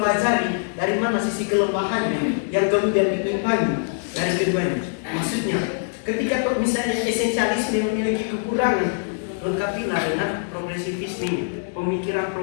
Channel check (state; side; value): silent; right; 62 dB below the other